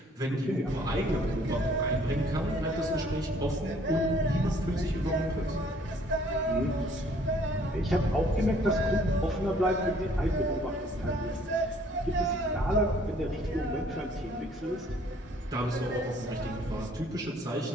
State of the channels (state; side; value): normal; both; correlation 0.59